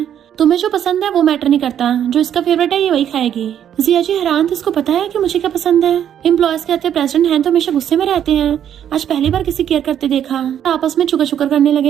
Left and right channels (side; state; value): left; quieter; 9.8 dB